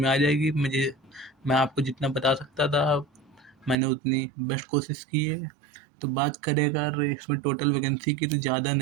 आ जाएगी। मैं आपको जितना बता सकता था मैंने उतनी बेस्ट कोशिश की है। तो बात करें अगर इसमें टोटल वैकेंसी की तो ज़्यादा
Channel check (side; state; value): left; drops out; at 3.8 s